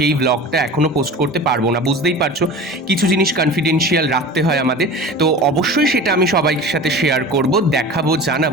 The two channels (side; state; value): both; normal; correlation 0.36